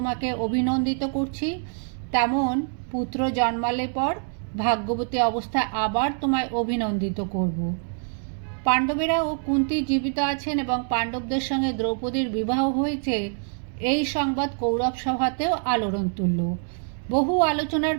অভিনন্দিত করছি, তেমন পুত্র জন্মালে পর ভাগ্যবতী অবস্থায় আবার তোমায় অভিনন্দিত করব। পাণ্ডবেরা ও কুন্তী জীবিত আছেন এবং পাণ্ডবদের সঙ্গে দ্রৌপদীর বিবাহ হয়েছে, এই সংবাদ কৌরব সভাতেও আলোড়ন তুলল। বহু আলোচনার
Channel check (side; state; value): left; silent; 62 dB below the other